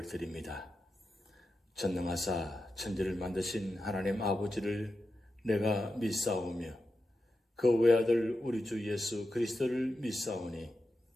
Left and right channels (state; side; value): normal; both; correlation 0.90